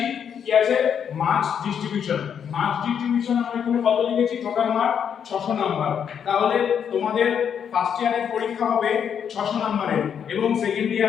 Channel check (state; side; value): quieter; right; 8.0 dB